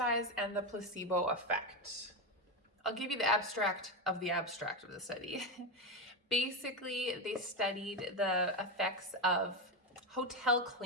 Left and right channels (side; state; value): both; normal; correlation 0.13